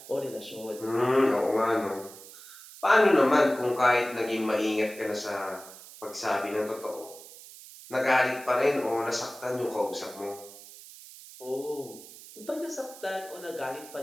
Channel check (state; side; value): noise; right; hiss, 17 dB below the sound